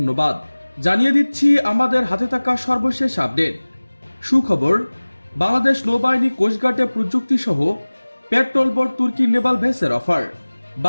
জানিয়ে দিচ্ছি আমাদের হাতে থাকা সর্বশেষ আপডেট। সুখবর, বাংলাদেশ নৌবাহিনী কোস্টগার্ডে প্রযুক্তি সহ পেট্রোল বোট তুর্কি নেভাল ভেসের অফার।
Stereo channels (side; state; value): both; inverted; correlation -1.00